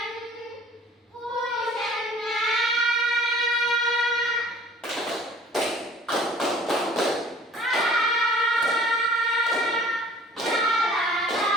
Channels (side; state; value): both; normal; correlation 0.50